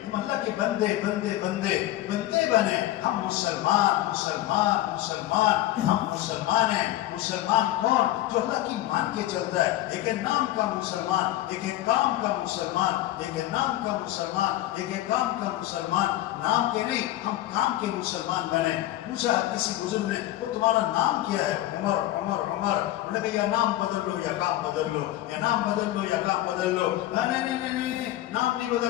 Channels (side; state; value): right; quieter; 14.9 dB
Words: ہم اللہ کے بندے بنے، ہم مسلمان ہیں۔ مسلمان کون؟ جو اللہ کی مان کے چلتا ہے، ایک ہے نام کا مسلمان، ایک ہے کام کا مسلمان، ایک ہے نام کا مسلمان، ایک ہے کام کا مسلمان، نام کے نہیں، ہم کام کے مسلمان بنے۔ پوچھا کسی بزرگ نے وہ تمہارا نام کیا ہے؟ عمر۔ انہوں نے کہا یا نام بدل لو یا کام بدل لو، یا نام بدل لو یا کام بدل لو۔ نہیں، نام نہیں